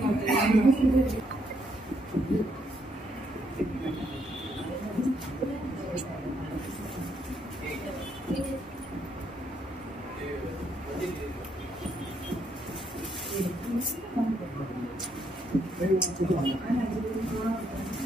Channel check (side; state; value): both; normal; correlation 0.74